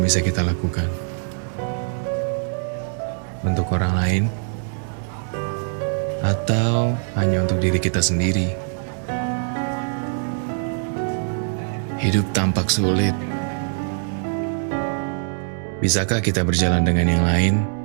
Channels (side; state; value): left; silent; digital silence